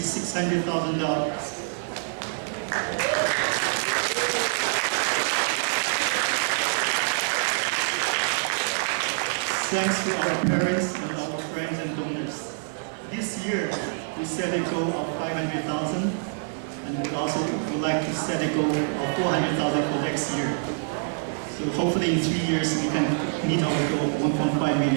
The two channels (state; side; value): silent; left; digital silence